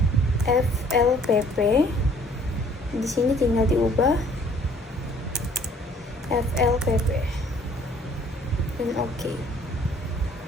FLPP. Di sini tinggal diubah FLPP dan OK.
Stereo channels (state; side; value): normal; both; correlation 0.57